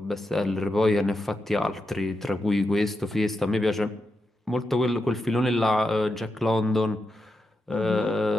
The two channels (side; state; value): both; normal; correlation 0.87